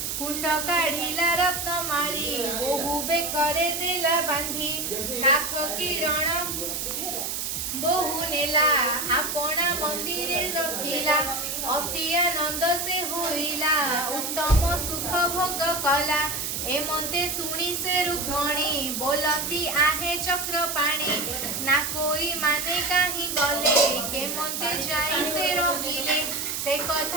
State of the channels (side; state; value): right; noise; hiss, 3 dB below the sound